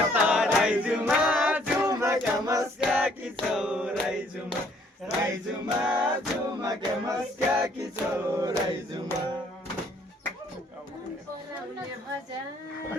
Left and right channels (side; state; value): both; normal; correlation 0.63